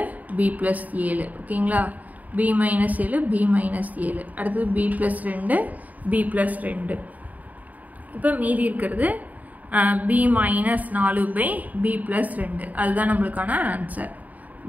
பி ப்ளஸ் 7. ஓகேங்களா? P minus 7 p minus 7. அடுத்தது பி ப்ளஸ் 2 பி ப்ளஸ் 2. இப்போ மீதி இருக்கிறது B minus 4 by B plus 2. அதுதான் நம்மளுக்கான answer.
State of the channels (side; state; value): left; late; 0.076 ms